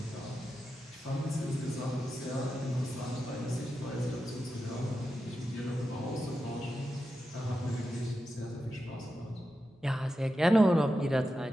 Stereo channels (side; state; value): both; normal; correlation 0.90